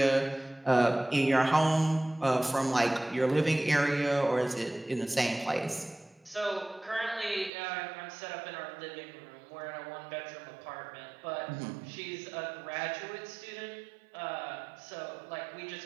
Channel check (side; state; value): left; drops out; at 7.5 s